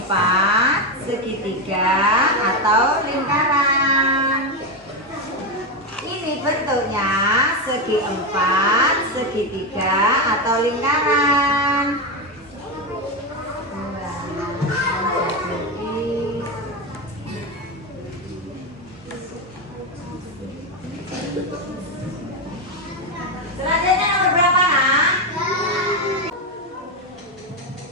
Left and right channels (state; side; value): normal; both; correlation 0.10